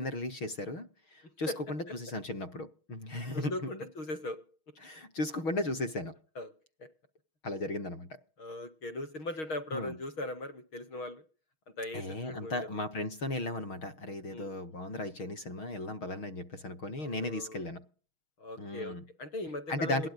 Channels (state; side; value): late; right; 6.4 ms